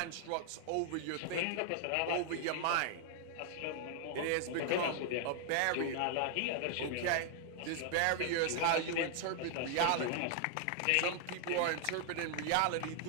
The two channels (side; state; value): both; different; correlation 0.00